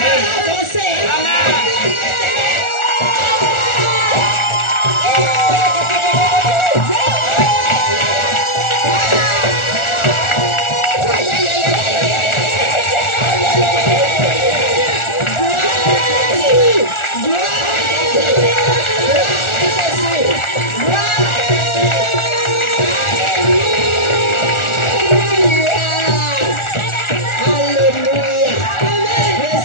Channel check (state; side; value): late; right; 1.4 ms